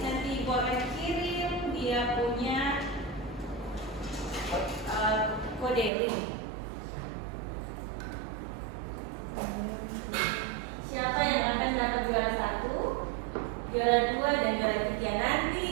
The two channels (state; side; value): drops out; left; at 5.9 s